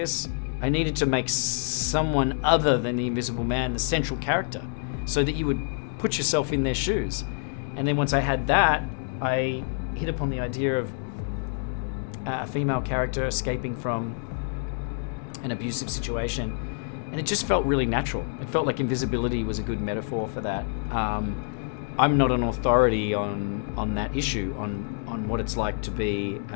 I needed to make someone other than the Invisible Man the central character, so that you would put yourself in their shoes. And then once I had that, I hit upon the idea of a female character escaping from an abusive situation, and it just felt really natural. It felt like invisibility was a good metaphor for that. I'm not an authority on that issue, on what it's like to be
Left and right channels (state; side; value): silent; right; 60 dB below the other